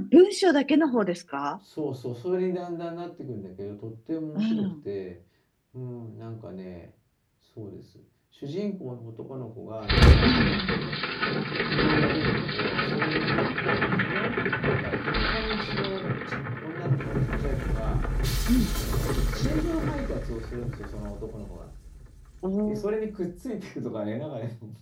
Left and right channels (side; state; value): both; identical; correlation 1.00